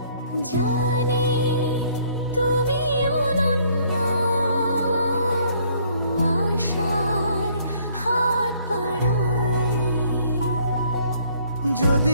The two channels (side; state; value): both; inverted; correlation -0.62